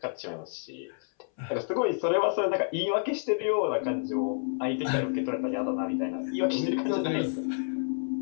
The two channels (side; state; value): right; silent; 58 dB below the other